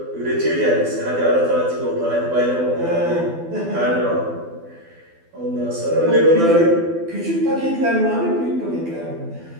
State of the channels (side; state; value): left; late; 12 ms